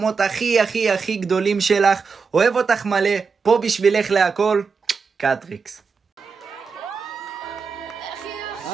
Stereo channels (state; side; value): quieter; left; 5.3 dB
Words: הכי הכי הכי גדולים שלך. אוהב אותך מלא, פה בשבילך להכל. קטריקס.